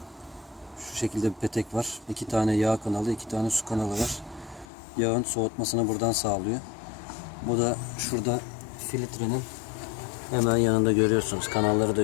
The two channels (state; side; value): drops out; right; at 4.7 s